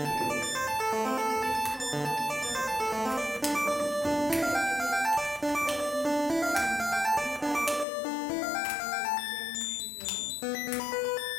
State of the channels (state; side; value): drops out; right; at 7.9 s